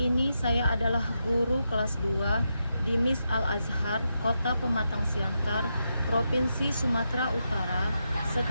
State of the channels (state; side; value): inverted; both; correlation -0.85